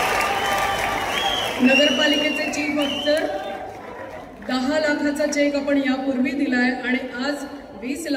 नगरपालिकेचे चीफ ऑफिसर 10 लाखाचा चेक आपण यापूर्वी दिलाय आणि आज 20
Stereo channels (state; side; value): identical; both; correlation 1.00